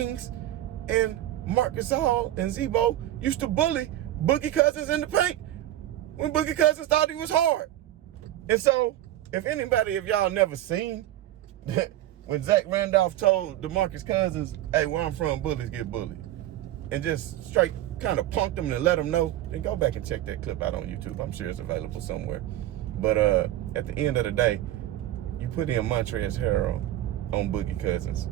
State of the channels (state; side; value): quieter; left; 13.7 dB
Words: and Marc Gasol and Zebo used to bully Boogie Cousins in the paint when Boogie Cousins thought he was hard. And so, if anybody of y'all never seen when Zach Randolph told DeMarcus Cousins, hey, where I'm from, bullies get bullied, and just straight kind of punked him and let him know, then go back and check that clip out on YouTube. I'm sure it's available somewhere. But at the end of the day, you put in Montrezl Harrell on Boogie Cousins.